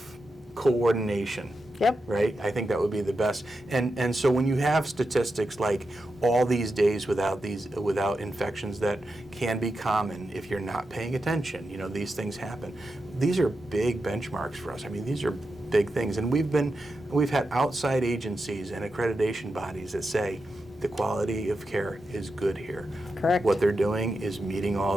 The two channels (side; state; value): both; normal; correlation 0.89